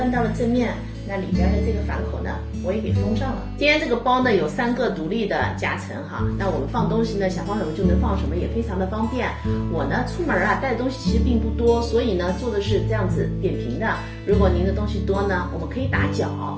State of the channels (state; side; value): identical; both; correlation 1.00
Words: 到了正面，那里边的这个反口呢我也给封上了。今天这个包呢有3个独立的夹层哈，那我们放东西呢想放什么就能放什么，也非常的方便。我呢出门带的东西其实并不多，所以呢做的是这样子扁平的。如果您的东西多呢，我们可以打角，